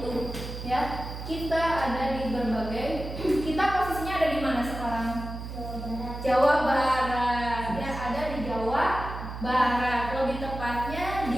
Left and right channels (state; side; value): noise; right; hum, 8 dB below the sound